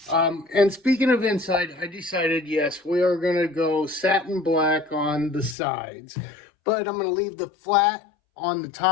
And speaking of inside, I decided, yes, we are going to go satin black on the sides. But I'm going to leave the flat on the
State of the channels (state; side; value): drops out; right; at 5.6 s